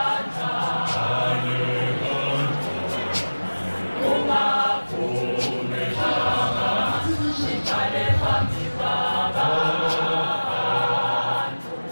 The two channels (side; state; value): both; inverted; correlation -1.00